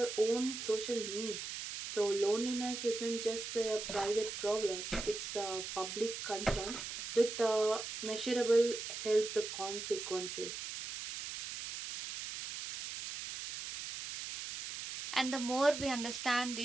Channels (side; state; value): right; noise; hiss, 7 dB below the sound